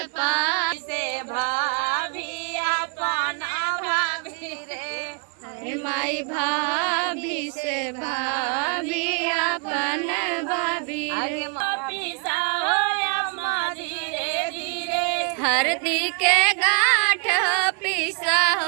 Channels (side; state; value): left; quieter; 38.6 dB